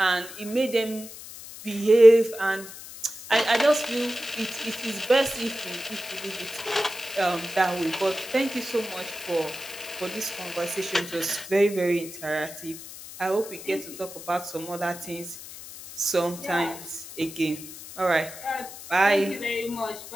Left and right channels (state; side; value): noise; left; hiss, 14 dB below the sound